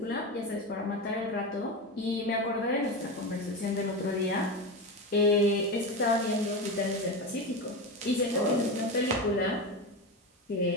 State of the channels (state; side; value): normal; both; correlation 0.20